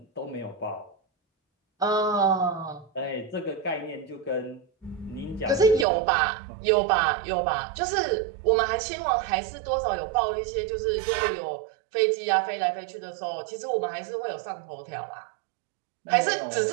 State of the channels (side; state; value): left; drops out; at 5.9 s